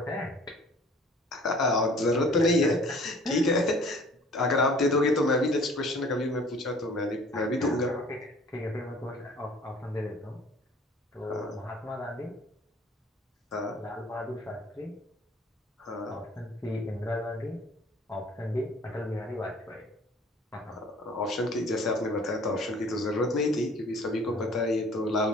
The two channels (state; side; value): normal; both; correlation 0.51